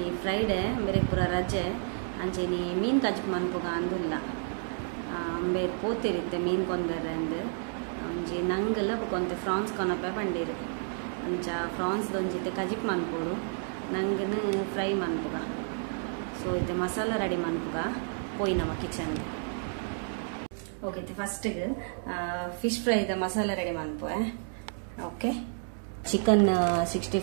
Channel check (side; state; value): left; silent; 57 dB below the other